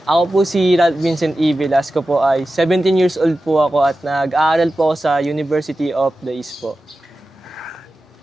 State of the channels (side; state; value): both; normal; correlation 0.93